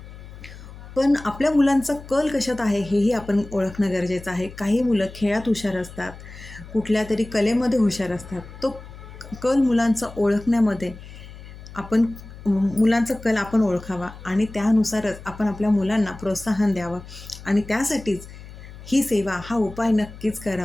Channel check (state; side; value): noise; left; hum, 16 dB below the sound